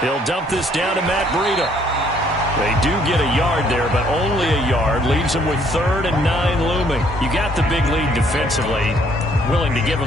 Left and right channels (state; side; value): normal; both; correlation 0.64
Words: dump this down to Matt Breida. They do get a yard there, but only a yard. Leaves them with 3rd and 9 looming. You got the big lead defensively. Willing to give